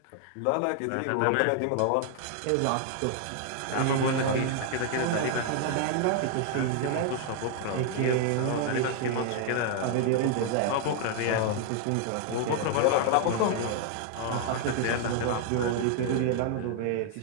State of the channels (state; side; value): different; both; correlation 0.00